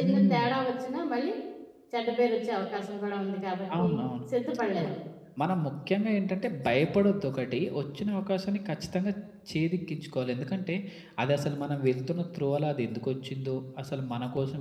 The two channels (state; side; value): identical; both; correlation 1.00